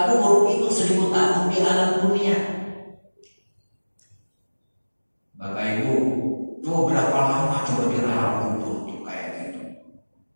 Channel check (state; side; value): inverted; both; correlation -1.00